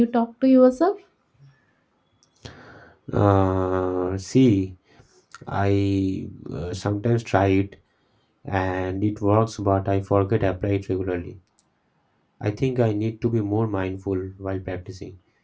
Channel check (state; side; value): identical; both; correlation 1.00